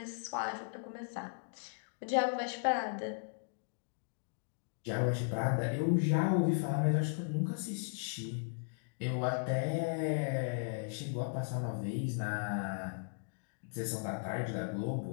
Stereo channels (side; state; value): right; silent; digital silence